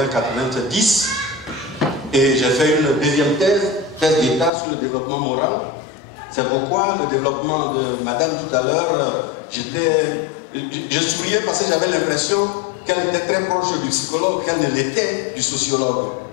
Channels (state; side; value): drops out; right; at 4.5 s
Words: et j'ai fait une deuxième thèse d'État sur le développement moral. C'est pourquoi le développement de madame tout à l'heure, je souriais parce que j'avais l'impression qu'elle était très proche du psychologue, qu'elle ne l'était du sociologue.